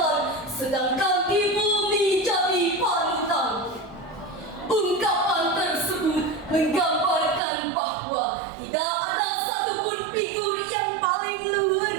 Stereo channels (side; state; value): left; drops out; at 7.4 s